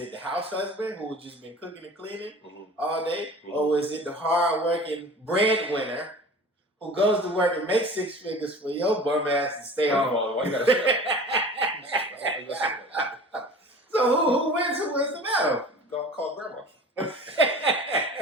the house husband who just been cooking and cleaning all day? Mm-hmm. Or was it the hard-working breadwinner who goes to work and makes six figures for your bum ass to stay home? Why you gotta say So who wins? Who wins the battle? Go call grandma.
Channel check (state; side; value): normal; both; correlation 0.40